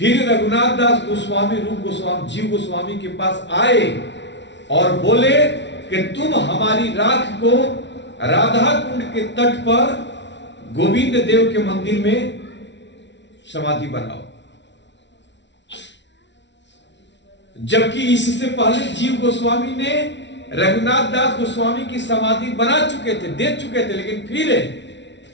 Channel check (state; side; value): late; right; 0.51 ms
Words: रघुनाथ दास गोस्वामी रूप गोस्वामी जीव गोस्वामी के पास आए और बोले कि तुम हमारी राख को राधा कुंड के तट पर गोविंद देव के मंदिर में समाधि बनाओ। जबकि इससे पहले जीव गोस्वामी ने रघुनाथ दास गोस्वामी की समाधि बना चुके थे, दे चुके थे। लेकिन फिर